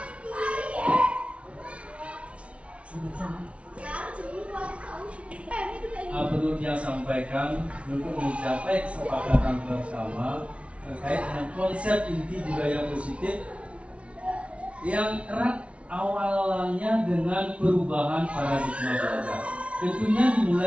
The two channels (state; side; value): late; left; 0.062 ms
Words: Perlu dia sampaikan untuk mencapai kesepakatan bersama terkait dengan konsep inti budaya positif yang erat awalnya dengan perubahan paradigma belajar. Tentunya